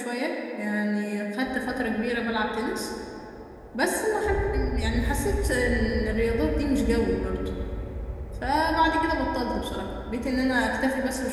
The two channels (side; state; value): both; identical; correlation 1.00